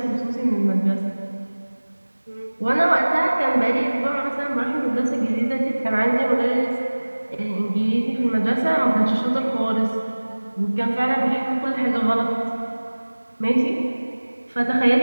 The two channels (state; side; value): inverted; both; correlation -1.00